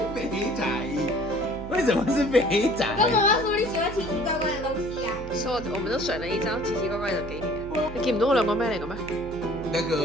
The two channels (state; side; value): noise; right; hum, 12 dB below the sound